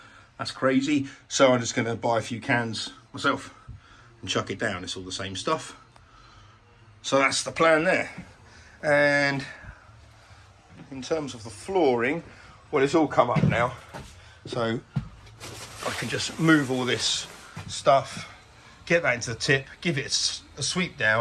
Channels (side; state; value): both; identical; correlation 1.00